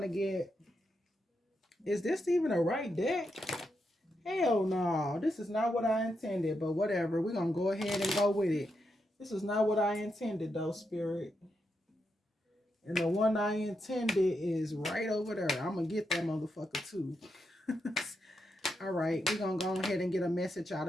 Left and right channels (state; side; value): normal; both; correlation 0.84